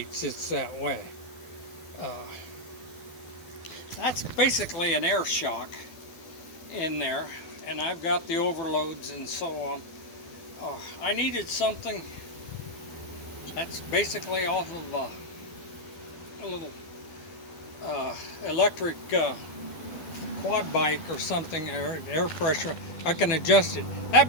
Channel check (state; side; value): late; right; 12 ms